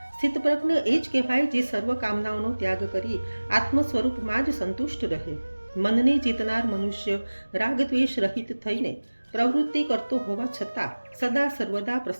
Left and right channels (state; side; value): inverted; both; correlation -1.00